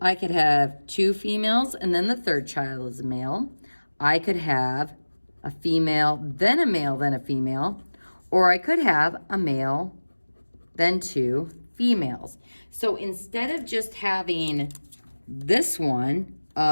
could have 2 females and then the 3rd child is a male. I could have a female, then a male, then a female. Or I could have a male, then 2 females. So instead of just having this one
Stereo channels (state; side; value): inverted; both; correlation -1.00